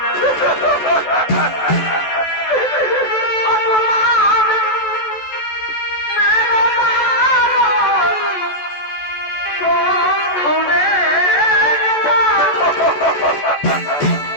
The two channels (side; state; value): right; late; 14 ms